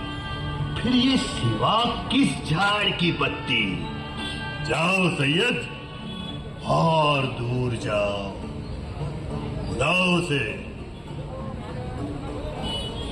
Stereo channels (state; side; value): identical; both; correlation 1.00